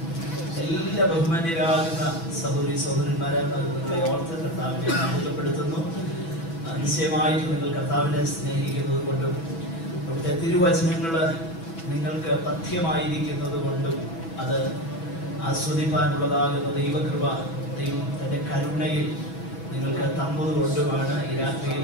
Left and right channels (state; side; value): late; right; 6.0 ms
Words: എല്ലാ ബഹുമാന്യരാകുന്ന സഹോദരി സഹോദരന്മാരെ നിങ്ങളെ ഓർത്ത് കർത്താവിനെ മഹത്വപ്പെടുത്തുന്നു. നിശ്ചയമായിട്ട് നിങ്ങൾ കർത്താവിനെ സ്നേഹിക്കുന്നത് കൊണ്ടും അവിടുത്തെ തിരുവചനങ്ങൾ നിങ്ങൾക്ക് പഥ്യമായിരിക്കുന്നത് കൊണ്ടും അത് ആസ്വദിപ്പാനുള്ളതാകുന്ന ദൈവകൃപ ദൈവം തൻ്റെ കരുണയിൽ നിങ്ങൾക്ക് തന്നത് കൊണ്ടുമാണ് ഈ